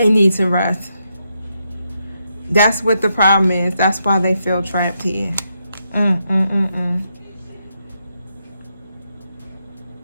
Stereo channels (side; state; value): both; inverted; correlation -0.82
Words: need to rest. That's what the problem is. That's why they feel trapped here.